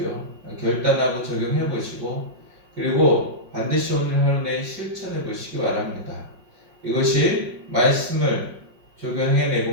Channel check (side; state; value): left; late; 5.5 ms